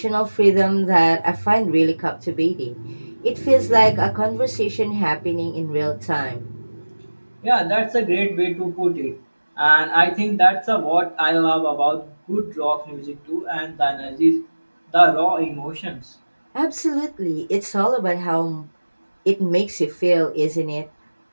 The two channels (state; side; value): inverted; both; correlation -1.00